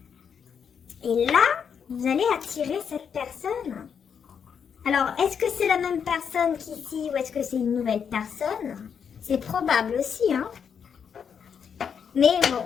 et là, vous allez attirer cette personne Alors, est-ce que c'est la même personne qu'ici ou est-ce que c'est une nouvelle personne? C'est probable aussi, hein. Mais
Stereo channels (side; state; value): right; quieter; 7.2 dB